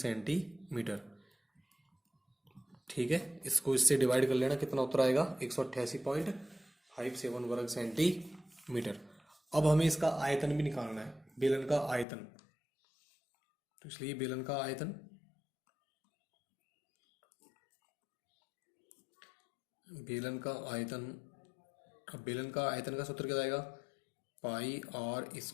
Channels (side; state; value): right; drops out; at 12.1 s